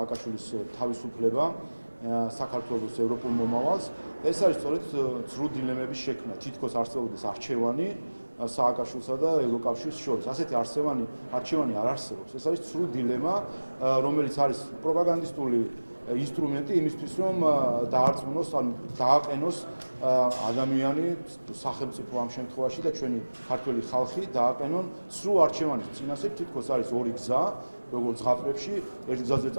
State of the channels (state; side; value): inverted; both; correlation -1.00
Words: თავისუფლება საქართველოს ევროპულ მომავალს. ეს არის სწორედ ცრუ დილემების შექმნა, თითქოს არსებობდეს არჩევანი სააკაშვილსა და ევროკავშირის შორის. ასეთი არჩევანი არ არსებობს. ეს არის ცრუ დილემა, რომელიც არის პროპაგანდისტული ინსტრუმენტი იმისთვის, რომ დაარწმუნოს, ანუ დააყენოს ადამიანი, სახელმწიფო ამ შემთხვევაში და ჩვენი ქართველი ხალხი დააყენონ ცრუ არჩევანის წინასწარ. თითქოს არის ორი გზა, როგორც ზღაპრებში, ერთ გზაზე